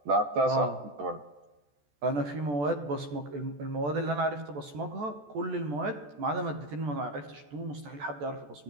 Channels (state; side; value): late; left; 14 ms